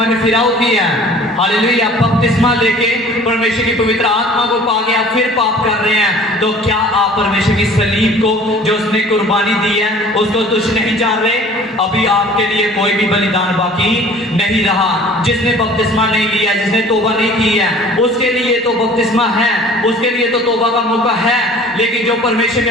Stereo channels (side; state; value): both; normal; correlation 0.48